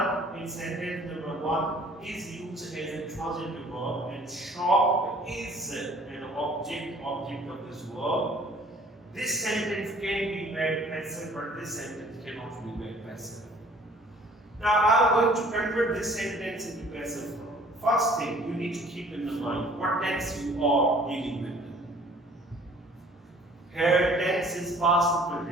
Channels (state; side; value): normal; both; correlation 0.53